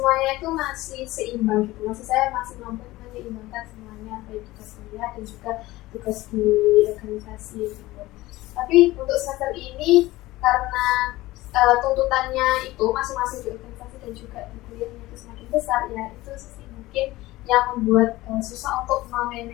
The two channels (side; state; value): right; quieter; 18.2 dB